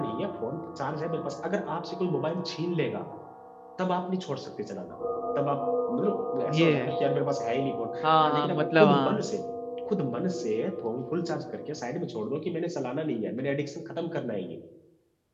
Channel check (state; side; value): identical; both; correlation 1.00